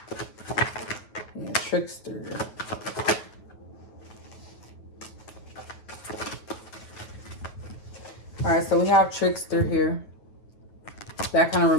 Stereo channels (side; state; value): right; late; 9.3 ms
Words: Yeah, trickster. All right, so we have trickster here. That kind of